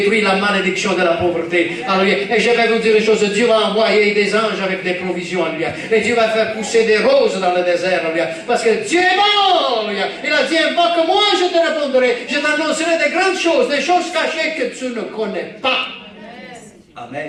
la malédiction de la pauvreté. Alléluia. Et je vais vous dire une chose, Dieu va envoyer des anges avec des provisions. Alléluia. Et Dieu va faire pousser des roses dans le désert. Alléluia. Parce que Dieu est bon. Alléluia. Il a dit, invoque-moi, je te répondrai. Je t'annoncerai des grandes choses, des choses cachées que tu ne connais pas.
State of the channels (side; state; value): both; identical; correlation 1.00